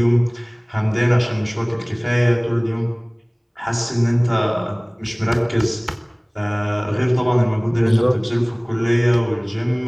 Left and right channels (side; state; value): both; identical; correlation 1.00